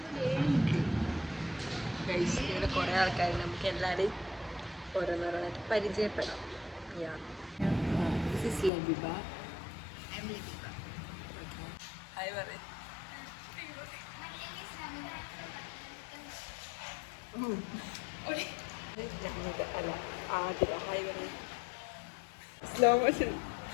ഗൈസ്, ഇവിടെ കുറേ ആൾക്കാർ നമുക്ക് എല്ലാവരെയും ഓരോന്നോരോന്നായിട്ട് പരിചയപ്പെടാം. This is ലബിബ. ഹായ് പറയ്. അല്ല ആതിര. ഹായ് പറയ്. Slow motion.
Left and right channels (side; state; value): right; drops out; at 8.7 s